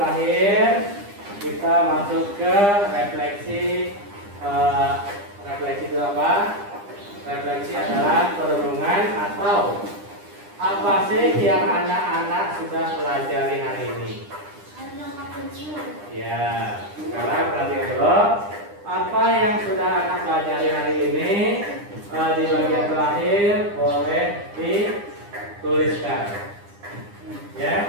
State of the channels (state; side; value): late; left; 9.9 ms